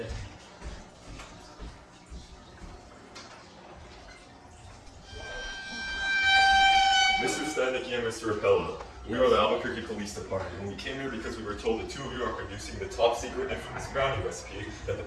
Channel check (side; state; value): both; identical; correlation 1.00